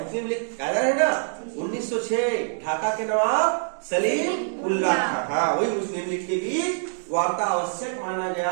मुस्लिम लीग कायदा है ना 1906, ढाका के नवाब सलीम उल्लाह खां, हाँ वही मुस्लिम लीग के बीच वार्ता आवश्यक माना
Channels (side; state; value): left; silent; digital silence